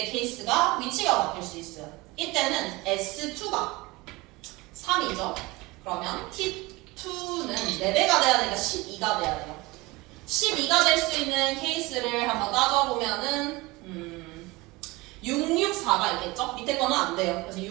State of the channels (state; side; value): quieter; left; 22.3 dB